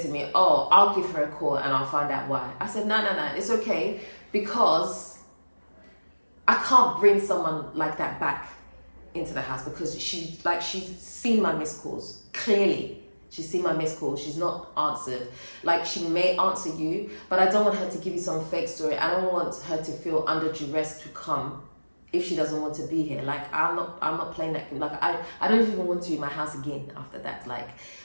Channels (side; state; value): both; inverted; correlation -1.00